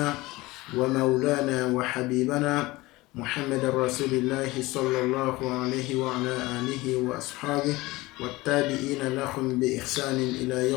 ومولانا وحبيبنا محمد رسول الله صلى الله عليه وعلى آله وأصحابه والتابعين لهم بإحسان إلى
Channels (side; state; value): right; quieter; 20.4 dB